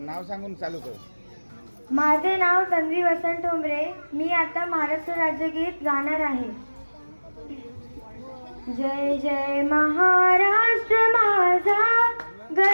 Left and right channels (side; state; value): both; inverted; correlation -1.00